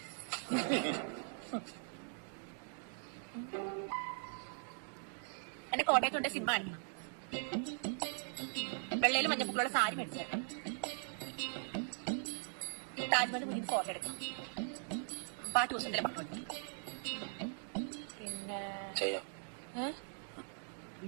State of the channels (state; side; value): silent; left; 51 dB below the other